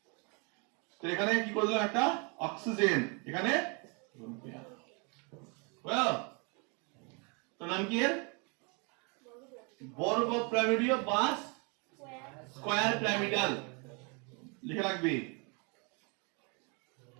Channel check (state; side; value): quieter; left; 33.6 dB